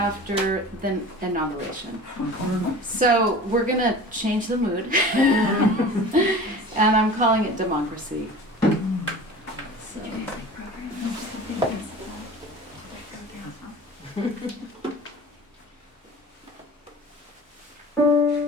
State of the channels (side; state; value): both; normal; correlation 0.39